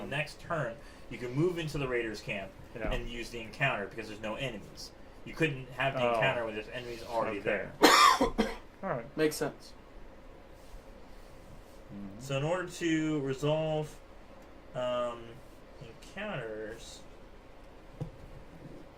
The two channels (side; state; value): both; identical; correlation 1.00